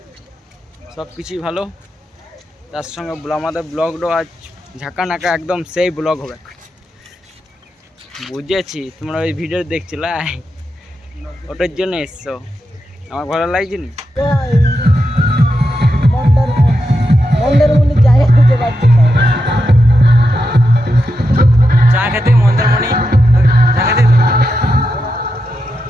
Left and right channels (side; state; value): both; normal; correlation 0.87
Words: সব কিছুই ভালো। তার সঙ্গে আমাদের ব্লগটাও আজ ঝাঁকা নাকা একদম সেই ব্লগ হবে। বুঝেছি তোমরা ওই ভিডিও দেখছিলে, ওটার জন্য এসছো। আমার ভালো লাগছে নি। চা খেতে মন্দারমণি, চা খেতে